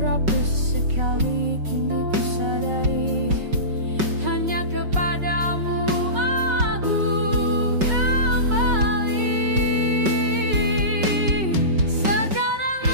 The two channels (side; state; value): left; late; 5.3 ms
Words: sekali. Kini ku sadari hanya kepadamu aku kembali. Sekarang